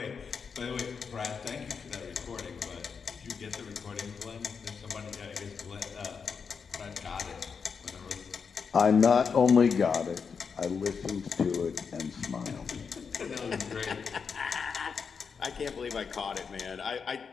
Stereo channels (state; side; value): quieter; right; 5.9 dB